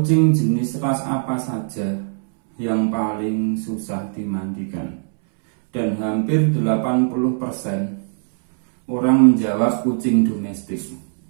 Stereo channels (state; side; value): silent; left; 65 dB below the other